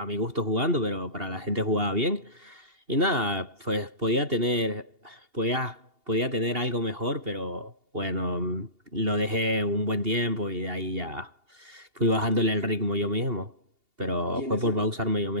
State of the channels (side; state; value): left; late; 2.8 ms